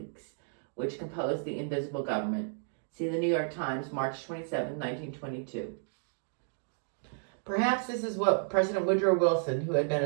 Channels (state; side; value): silent; left; digital silence